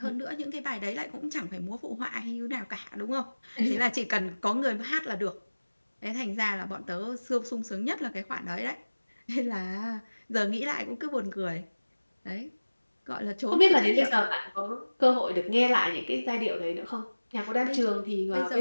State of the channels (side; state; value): both; inverted; correlation -1.00